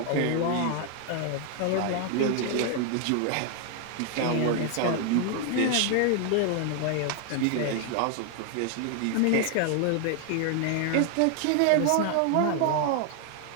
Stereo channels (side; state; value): both; different; correlation 0.00